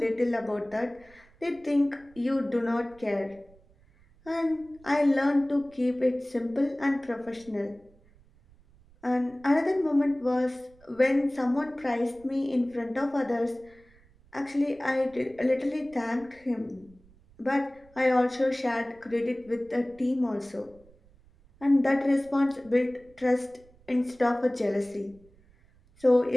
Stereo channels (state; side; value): noise; right; rumble, 28 dB below the sound